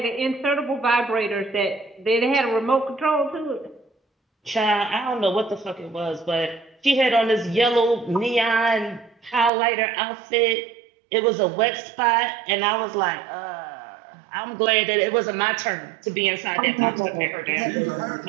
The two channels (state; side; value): drops out; left; at 9.5 s